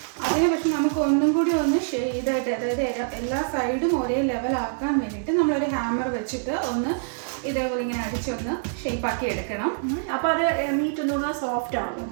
അതിനെ പക്ഷെ നമുക്ക് ഒന്നും കൂടി ഒന്ന് ഇതായിട്ട്, അതായത് എല്ലാ സൈഡും ഒരേ ലെവലാക്കാൻ വേണ്ടിയിട്ട് നമ്മളൊരു ഹാമർ വെച്ചിട്ട് ഒന്ന് ഇതേപോലെ ഇങ്ങനെ അടിച്ചൊന്ന് ഷേപ്പാക്കി എടുക്കണം. അപ്പോൾ അത് മീറ്റ് ഒന്നുകൂടെ സോഫ്റ്റ്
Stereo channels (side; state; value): left; silent; digital silence